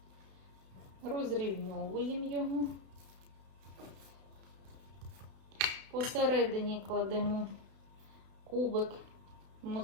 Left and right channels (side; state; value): left; late; 32 ms